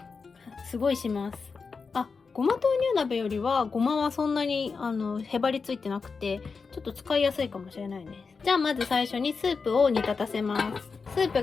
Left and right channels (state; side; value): quieter; right; 4.9 dB